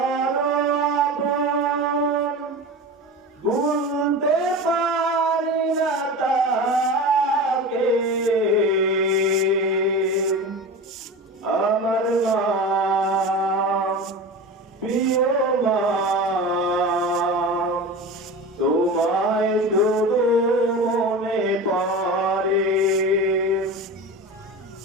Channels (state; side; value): normal; both; correlation 0.30